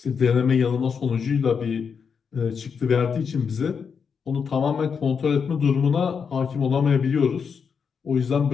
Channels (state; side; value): quieter; right; 6.3 dB